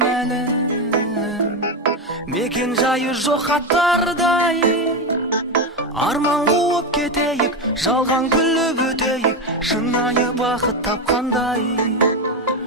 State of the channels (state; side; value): normal; both; correlation 0.12